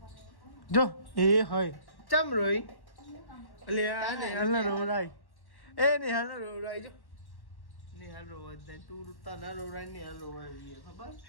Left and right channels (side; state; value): right; late; 1.1 ms